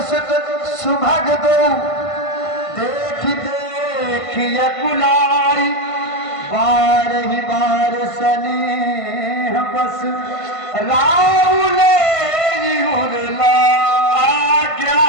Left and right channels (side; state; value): right; late; 1.5 ms